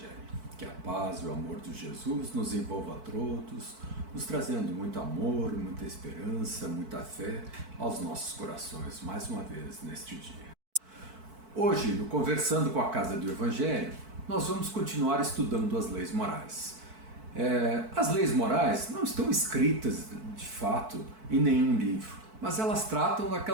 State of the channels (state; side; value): late; left; 4.5 ms